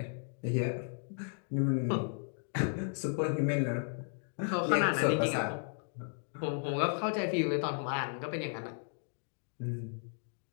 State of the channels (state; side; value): silent; right; 55 dB below the other